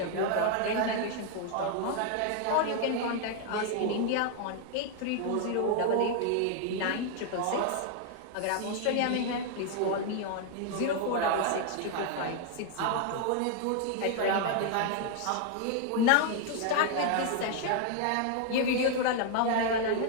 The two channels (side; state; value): both; different; correlation 0.00